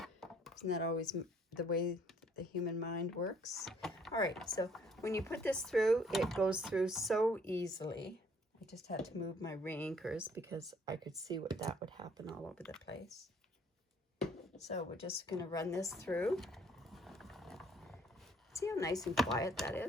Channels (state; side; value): normal; both; correlation 0.61